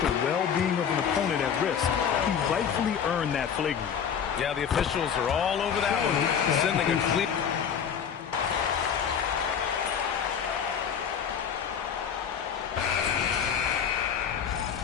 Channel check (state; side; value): quieter; right; 7.7 dB